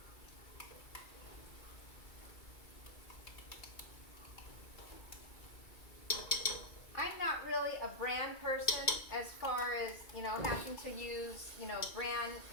I'm not really a brand person as far as, having to use, brand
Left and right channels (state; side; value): late; right; 2.2 ms